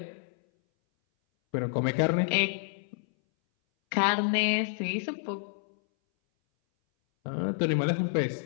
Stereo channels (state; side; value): silent; right; 59 dB below the other